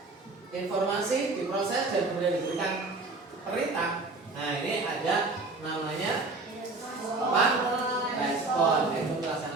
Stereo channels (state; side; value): quieter; left; 3.4 dB